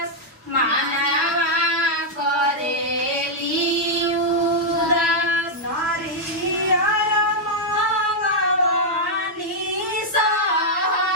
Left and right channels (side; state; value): both; normal; correlation -0.03